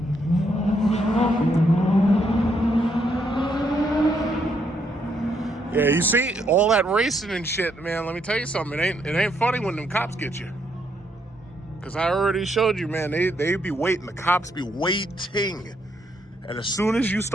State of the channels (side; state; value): both; normal; correlation 0.75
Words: Yeah, you see all that racing and shit, man. Let me tell you something. It ain't funny when them cops get you. Cause I already showed you, man. They be waiting. The cops be waiting, and as soon as you